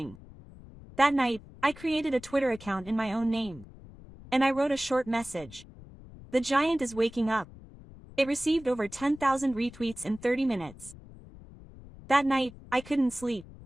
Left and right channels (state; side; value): noise; left; rumble, 19 dB below the sound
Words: That night, I created a Twitter account in my own name. And I wrote a short message. The giant is waking up. It received over 10,000 retweets in 30 minutes. That night, I couldn't sleep.